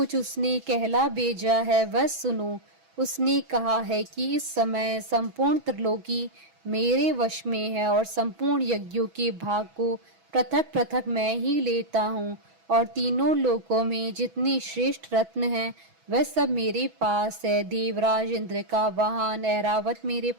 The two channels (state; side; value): late; left; 6.1 ms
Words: उसने कहला भेजा है वह सुनो। उसने कहा है कि इस समय संपूर्ण त्रिलोकी मेरे वश में है और संपूर्ण यज्ञों के भाग को पृथक पृथक मैं ही लेता हूँ और तीनों लोकों में जितने श्रेष्ठ रत्न हैं वह सब मेरे पास है। देवराज इंद्र का वाहन ऐरावत मेरे